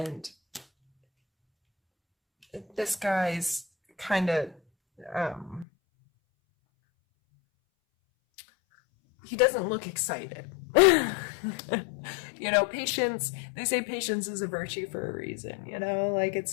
this guy's kind of, he doesn't look excited. You know, patience, they say patience is a virtue for a reason, you know, like it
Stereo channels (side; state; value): right; drops out; at 5.7 s